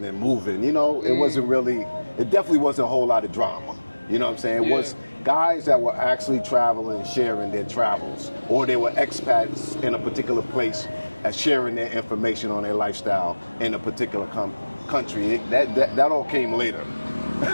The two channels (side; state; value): both; inverted; correlation -1.00